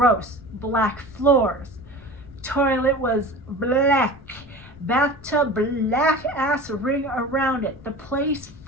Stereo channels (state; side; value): noise; left; rumble, 25 dB below the sound